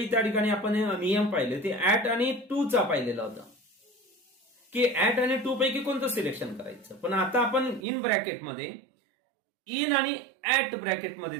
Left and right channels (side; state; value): left; drops out; at 7.9 s